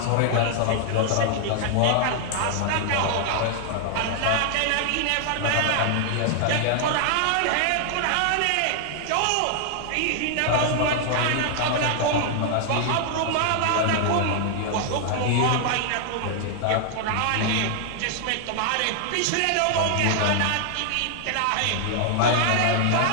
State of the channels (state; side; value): different; both; correlation 0.00